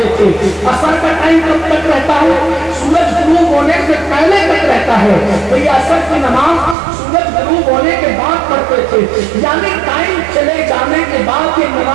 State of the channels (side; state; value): left; drops out; at 6.8 s